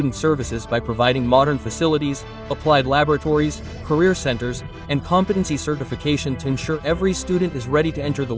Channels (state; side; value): identical; both; correlation 1.00